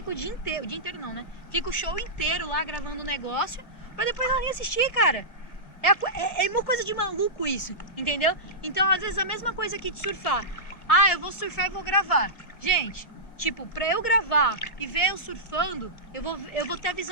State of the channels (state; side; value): late; right; 2.1 ms